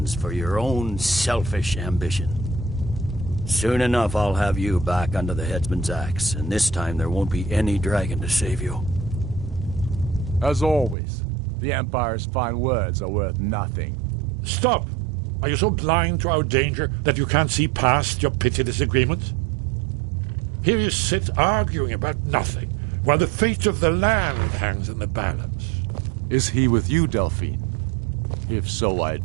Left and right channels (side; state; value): left; drops out; at 11.0 s